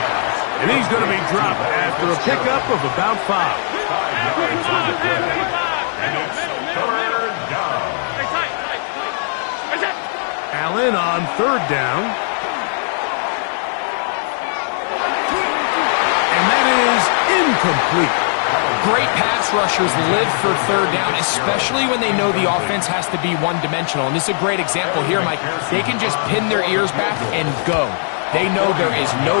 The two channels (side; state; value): right; silent; 67 dB below the other